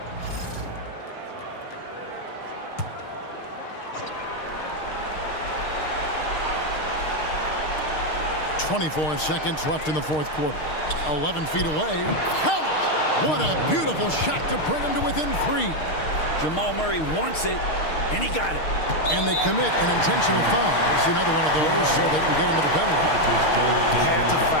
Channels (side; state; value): right; late; 6.5 ms